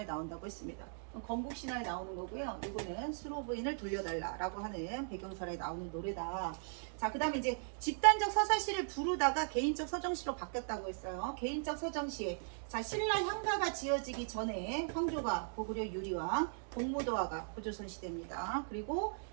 나온다고 했습니다. 건국신화에 나오는 거고요. 이거는 수로부인을 돌려달라라고 하는 배경설에 나오는 노래다. 자, 그 다음에 이제 집단적 서사시를 부르다가 개인적 서정시로 바뀌었다고 했어요. 개인적 서정시. 자, 신라 향가가 지어지기 전에 황조가 고구려 유리왕, 공무도화가 고조선 시대입니다. 그리고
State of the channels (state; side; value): silent; left; digital silence